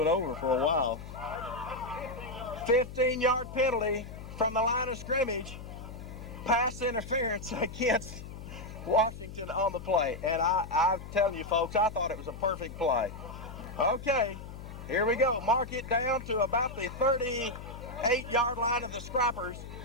over for a while. 15-yard penalty from the line of scrimmage. Pass interference against Washington on the play. And I'm telling you, folks, I thought it was a perfect play. Okay, here we go. Mark it down to about the 38-yard line of the Scrappers.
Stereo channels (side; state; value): left; noise; hum, 12 dB below the sound